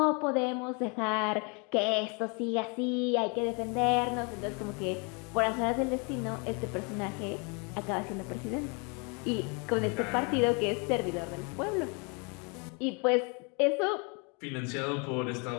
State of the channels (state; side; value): quieter; right; 33.2 dB